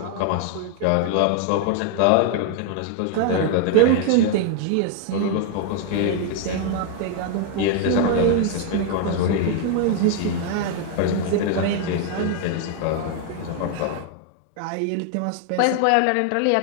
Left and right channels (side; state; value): both; different; correlation 0.00